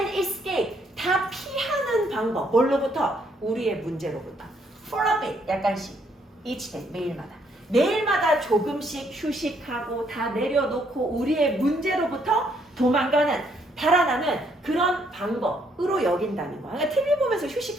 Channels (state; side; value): normal; both; correlation 0.70